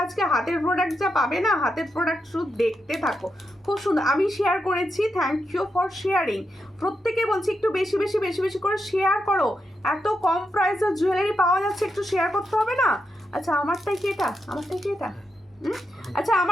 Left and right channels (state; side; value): normal; both; correlation 0.85